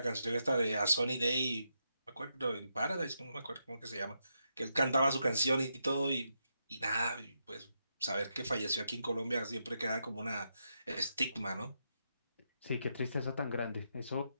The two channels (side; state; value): both; inverted; correlation -0.83